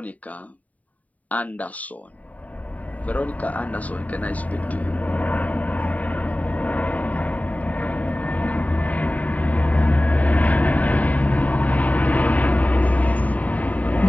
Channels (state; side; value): late; right; 0.071 ms